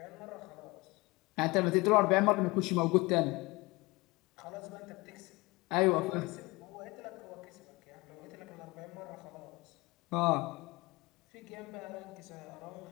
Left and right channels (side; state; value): right; quieter; 23.5 dB